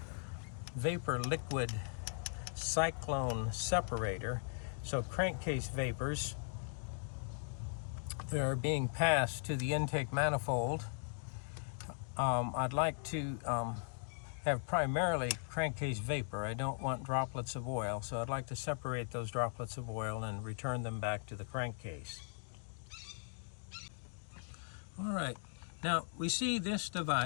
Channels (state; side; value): silent; right; digital silence